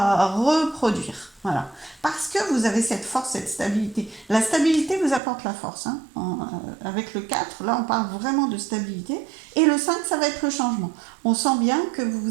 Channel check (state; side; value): drops out; left; at 5.2 s